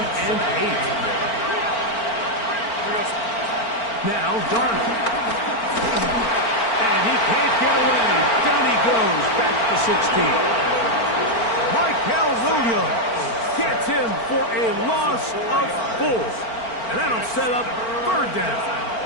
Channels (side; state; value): right; late; 4.4 ms